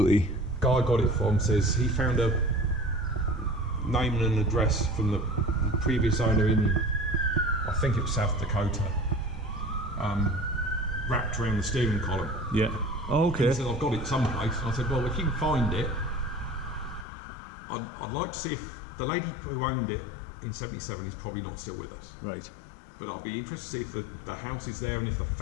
Guy I got it from says he found a name and an address from the previous owner in, I think it was South Dakota, wrapped around the steering column. Yeah. Oh, okay. He said, I've got it someplace. And I said, well, if you can find it, I'd like to see if the lady who owned it in 77 is probably not still with us. Right. But I'll be interested to see if the house is there and if the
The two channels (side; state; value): right; drops out; at 17.1 s